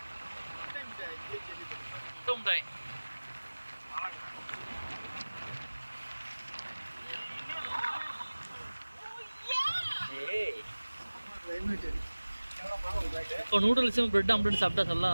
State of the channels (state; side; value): inverted; both; correlation -1.00